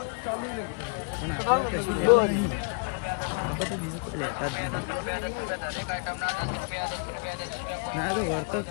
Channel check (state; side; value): quieter; right; 38.4 dB